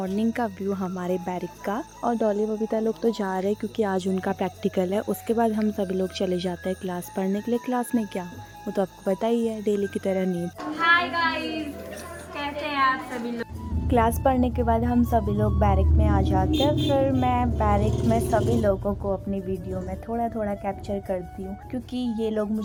का व्यू हमारे बैरिक का और डॉली बबीता लोग तो जा रहे हैं क्योंकि आज उनका प्रैक्टिकल है। उसके बाद हम सभी लोग चले जाते हैं क्लास पढ़ने के लिए। क्लास में क्या, वो तो आपको पता ही है, डेली की तरह नींद। हाय गाइस, कैसे हैं आप सभी लोग। क्लास पढ़ने के बाद हम सभी लोग बैरिक में आ जाते हैं। फिर मैं बैरिक में सभी लोगों को अपनी वीडियो में थोड़ा थोड़ा कैप्चर करती हूँ क्योंकि ये लोग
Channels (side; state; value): both; identical; correlation 1.00